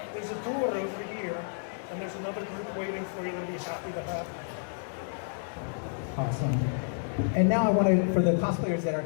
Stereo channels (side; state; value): right; silent; 58 dB below the other